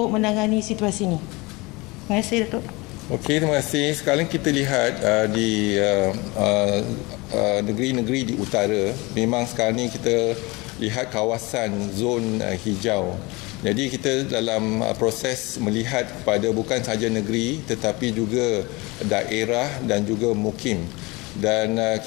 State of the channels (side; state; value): right; quieter; 24.3 dB